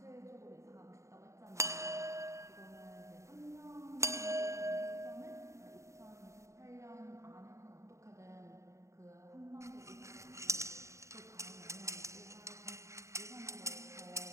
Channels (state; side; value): late; left; 0.14 ms